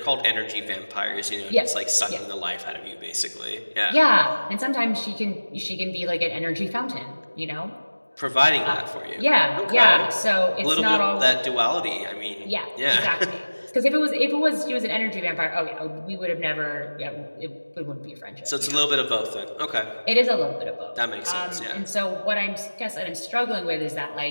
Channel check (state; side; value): inverted; both; correlation -1.00